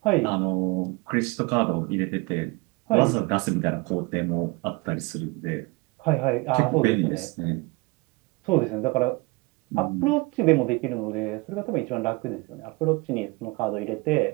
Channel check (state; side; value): quieter; left; 25.6 dB